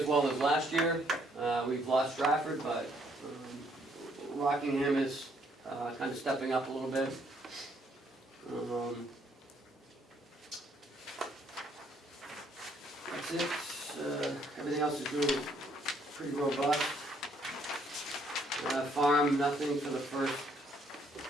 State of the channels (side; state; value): both; normal; correlation 0.68